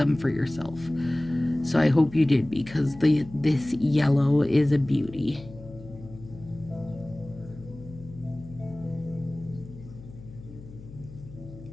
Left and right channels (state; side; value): noise; left; hum, 17 dB below the sound